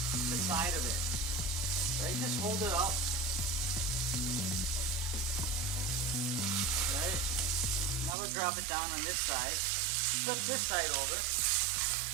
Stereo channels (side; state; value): left; drops out; at 8.1 s